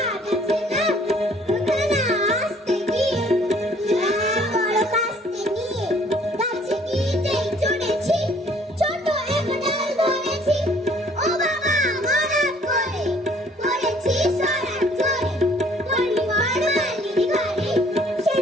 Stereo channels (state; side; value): normal; both; correlation 0.58